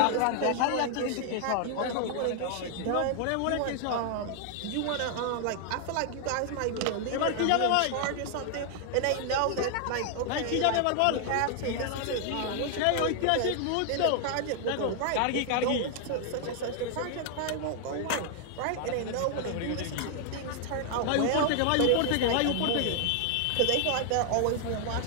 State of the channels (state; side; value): different; both; correlation 0.00